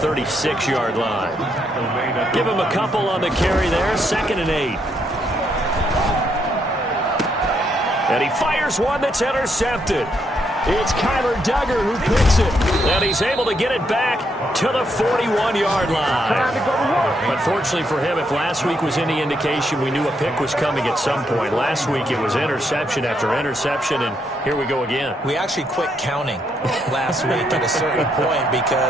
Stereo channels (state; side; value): normal; both; correlation 0.76